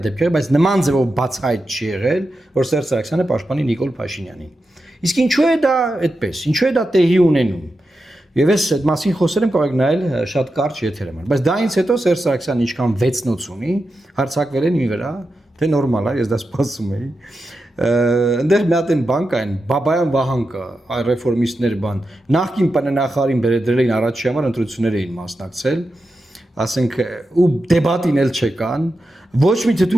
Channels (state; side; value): normal; both; correlation 0.90